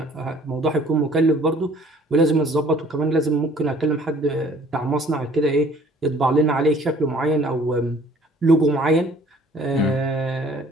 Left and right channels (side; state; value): both; normal; correlation 0.55